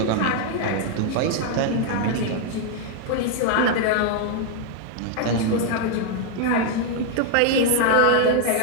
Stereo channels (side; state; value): both; different; correlation 0.00